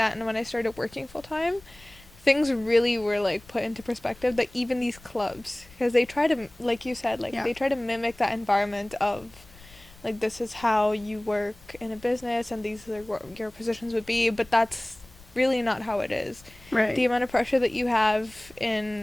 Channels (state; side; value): noise; left; rumble, 23 dB below the sound